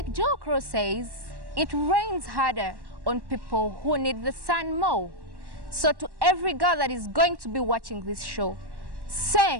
Joe Crow says, it rains harder on people who need the sun more. So to every girl that is going to be watching this show,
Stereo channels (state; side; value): late; left; 1.1 ms